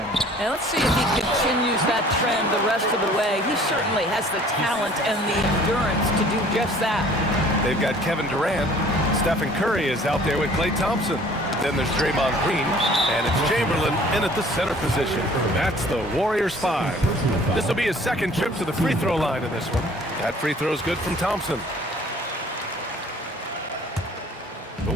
And let's see if he continues that trend the rest of the way. He certainly has the talent and the endurance to do just that. They've got Kevin Durant. Stephen Curry is out there with Klay Thompson. Then there's Draymond Green, and it's Chamberlain in at the center position. That's the Warriors 5. This will be his second trip to the free throw line in this one. That free throw is good from Thompson. The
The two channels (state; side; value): normal; both; correlation 0.52